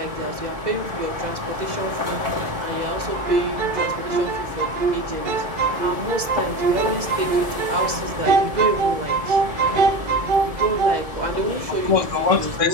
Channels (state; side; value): late; left; 2.0 ms